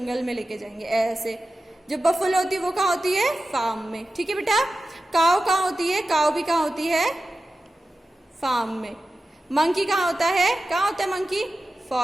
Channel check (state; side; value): normal; both; correlation 0.94